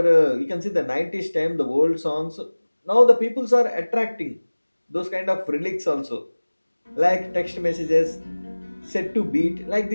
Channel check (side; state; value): both; inverted; correlation -1.00